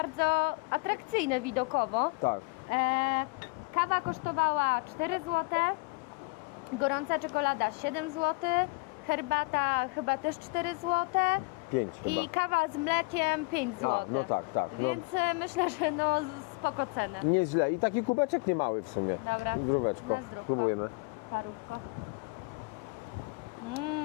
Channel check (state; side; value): quieter; right; 29.8 dB